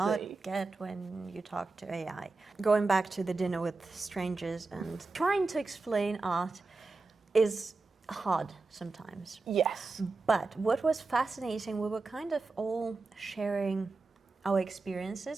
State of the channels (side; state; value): left; quieter; 3.7 dB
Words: Exactly. get when you talk to AI. Going back to the dinner with strangers and trying to explain art is hard sometimes. Yes. But what was fascinating, we were kind of all sharing our